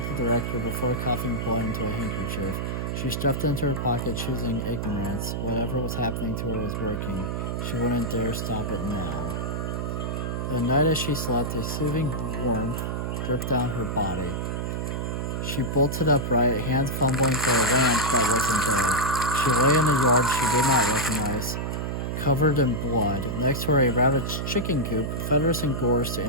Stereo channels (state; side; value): noise; right; hum, 2 dB below the sound